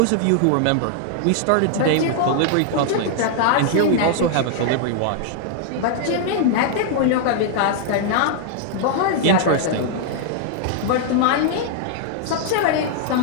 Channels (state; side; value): different; both; correlation -0.01